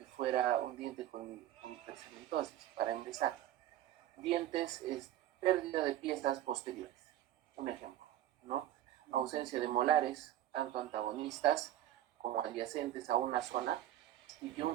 fuera un diente con hipercementosis? Para empezar, dientes es pérdida de piezas posteriores. Un ejemplo, ¿no? Ausencia de molares, tanto antagonistas como adyacentes a una zona, y que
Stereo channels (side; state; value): left; quieter; 12.8 dB